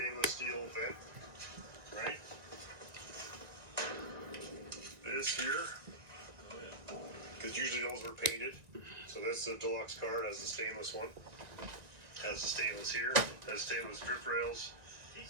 steel vent, right? This here, because usually those were painted. So that's the deluxe card, has the stainless one. Has the stainless here, has stainless drip rails.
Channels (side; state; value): left; late; 1.9 ms